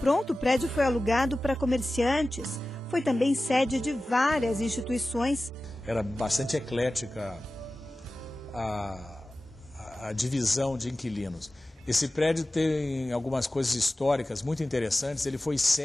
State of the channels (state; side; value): normal; both; correlation 0.96